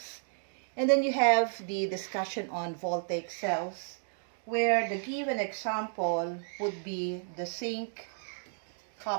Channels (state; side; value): silent; left; digital silence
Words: And then you have the discussion on voltaic cells, where the given example would be the zinc